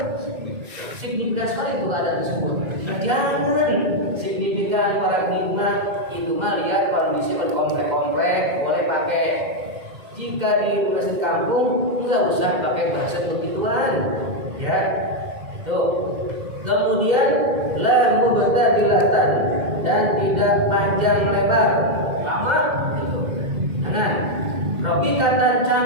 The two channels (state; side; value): late; left; 2.1 ms